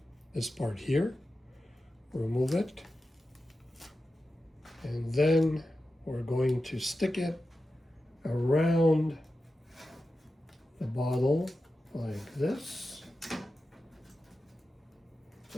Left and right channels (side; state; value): both; normal; correlation 0.92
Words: this part here, remove it, and then we're going to stick it around the bottle like this,